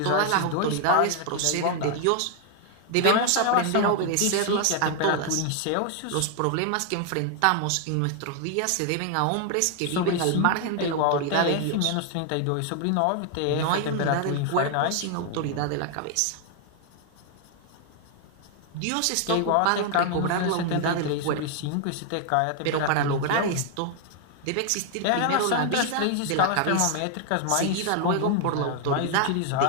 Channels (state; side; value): different; both; correlation 0.00